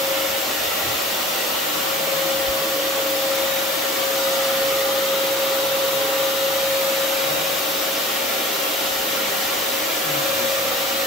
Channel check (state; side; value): normal; both; correlation 0.44